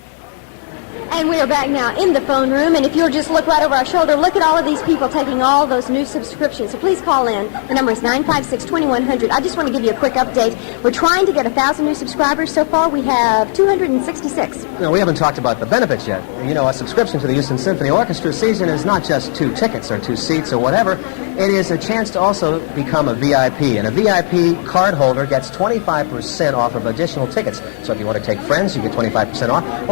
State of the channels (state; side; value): silent; right; digital silence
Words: And we are back now in the phone room, and if you'll just look right over our shoulder, look at all of these people taking all those new subscriptions. So please call in. The number is 956-2100. I just want to give you a quick update. We're trying to get 1,000 new subscribers. So far, we have 266. No, we haven't talked about the benefits yet. You know, a subscription to the Houston Symphony Orchestra season is not just 2 tickets or 2 seats or whatever. It is a chance to also become a VIP, and a VIP card holder gets 25% off of additional tickets. So if you want to take friends, you get 25% off.